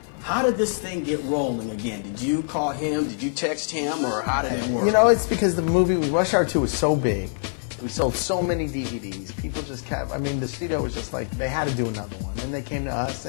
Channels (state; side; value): silent; right; 55 dB below the other